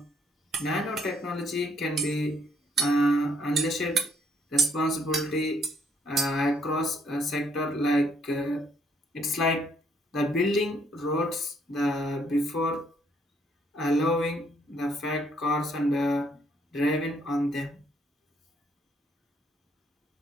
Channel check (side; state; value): both; normal; correlation 0.68